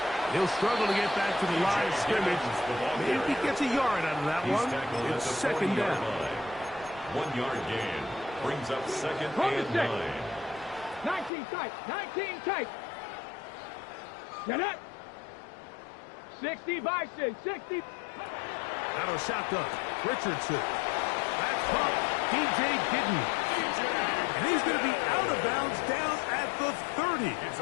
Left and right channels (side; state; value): right; drops out; at 11.3 s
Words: He'll struggle to get back to the line of scrimmage. Maybe he gets a yard out of that one. It's second down. 1 yard gain brings up second and 9. 19 tight. 19 tight. Get it. 60 by 6. 60. Out of shotgun. Richardson. That's caught. DJ Giddens. And he's going to be out of bounds down at the 30. It's